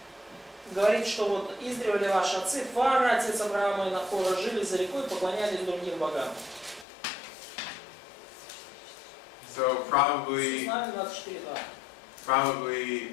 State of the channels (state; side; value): drops out; right; at 6.9 s